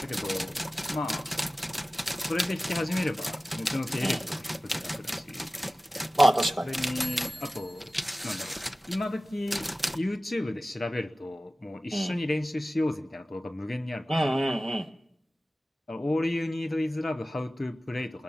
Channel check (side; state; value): both; normal; correlation 0.96